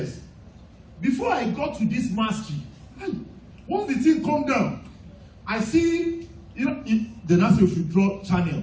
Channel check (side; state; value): both; identical; correlation 1.00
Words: Before I got to this mastery, once the thing come down, I see, the NASA should draw channel.